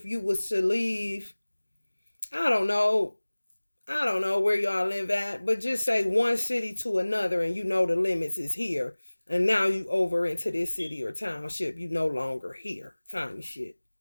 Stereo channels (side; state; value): both; inverted; correlation -1.00